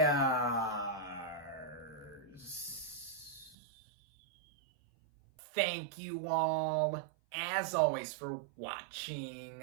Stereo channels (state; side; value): drops out; left; at 3.6 s